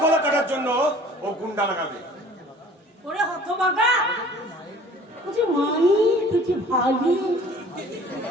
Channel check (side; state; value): both; normal; correlation 0.49